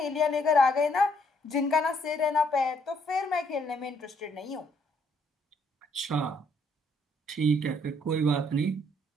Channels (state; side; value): normal; both; correlation 0.68